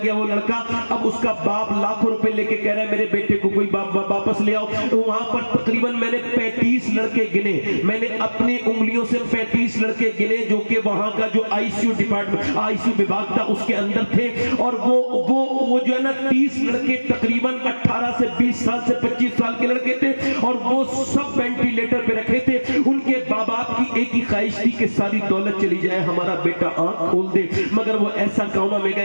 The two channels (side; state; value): both; inverted; correlation -1.00